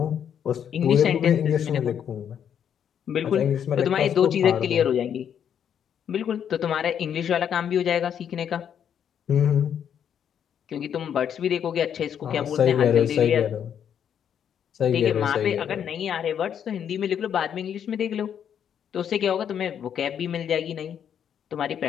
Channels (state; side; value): quieter; right; 8.7 dB